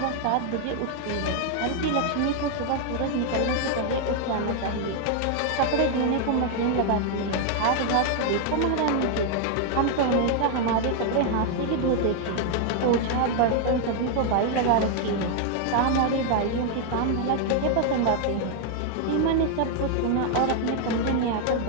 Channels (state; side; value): different; both; correlation 0.00